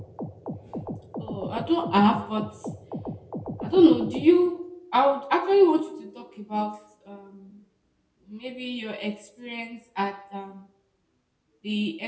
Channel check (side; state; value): both; identical; correlation 1.00